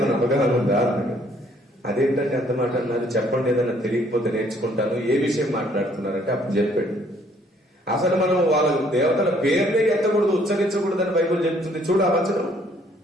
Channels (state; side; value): normal; both; correlation 0.63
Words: అవగాహన ఉందా అన్నాడు. అదేంటంటే అంత మాట అన్నారు, చెప్పండి, ఏదైనా తెలియకపోతే నేర్చుకుంటాను. ఏ విషయం మాట్లాడుతున్నారంటే అప్పుడు చెప్పాడు, అసలు మనం వాళ్ళ దేవతల పేర్లే ఎత్తకూడదు, ఉచ్చరించకూడదు అని బైబిల్ చెప్తుంది. చూడు ఆ వచనం